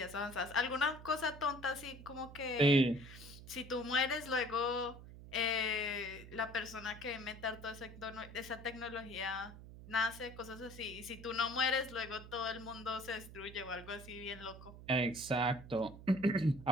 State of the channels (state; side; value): noise; right; hum, 15 dB below the sound